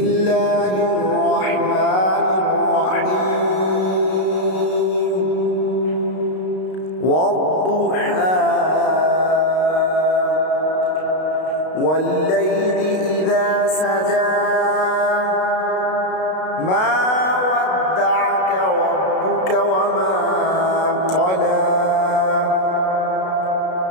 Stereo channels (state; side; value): late; right; 32 ms